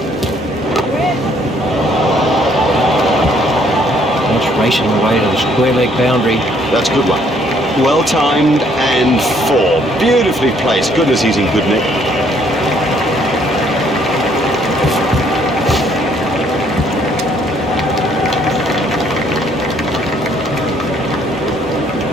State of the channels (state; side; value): normal; both; correlation 0.65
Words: That's racing away to the square leg boundary. That's a good one. Well timed and four. Beautifully placed. Goodness, he's in good nick.